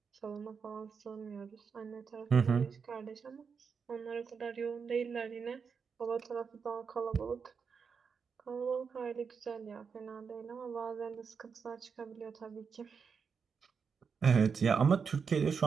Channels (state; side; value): quieter; left; 5.9 dB